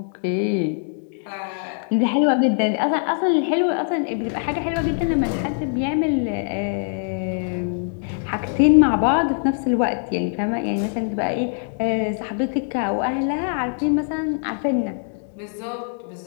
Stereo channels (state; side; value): silent; right; digital silence